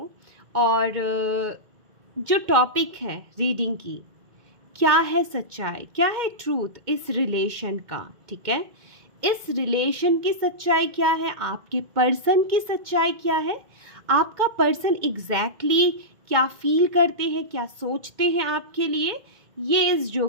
और जो टॉपिक है रीडिंग की, क्या है सच्चाई, क्या है ट्रूथ इस रिलेशन का। ठीक है, इस रिलेशन की सच्चाई क्या है, आपके पर्सन की सच्चाई क्या है, आपका पर्सन एग्जैक्टली क्या फील करते हैं, क्या सोचते हैं आपके लिए, ये इस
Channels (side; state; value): left; late; 2.2 ms